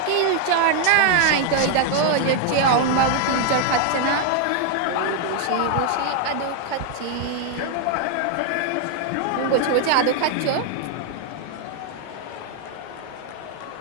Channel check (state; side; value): different; both; correlation 0.00